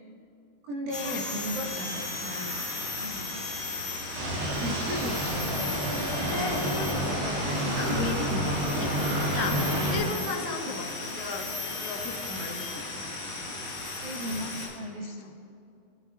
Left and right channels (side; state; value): left; late; 21 ms